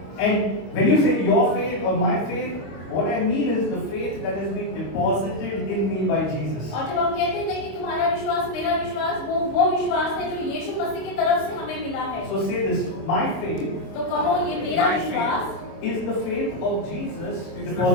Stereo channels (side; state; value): right; late; 25 ms